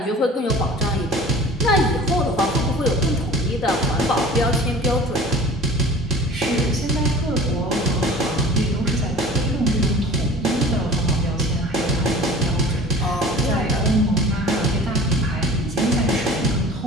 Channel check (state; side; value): normal; both; correlation 0.43